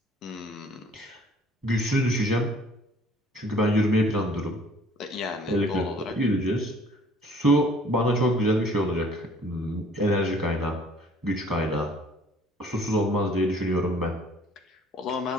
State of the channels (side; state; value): both; normal; correlation 0.55